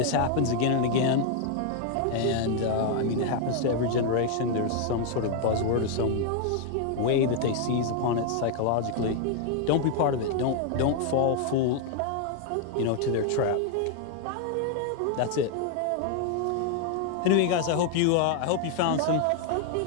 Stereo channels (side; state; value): both; different; correlation 0.00